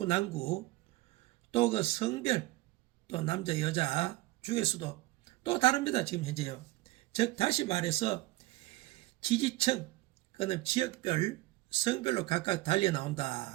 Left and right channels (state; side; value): quieter; left; 20.0 dB